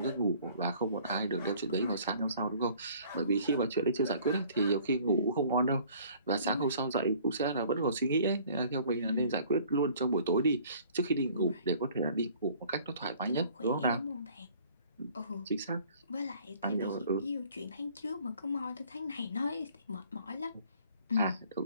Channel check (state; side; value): inverted; both; correlation -0.54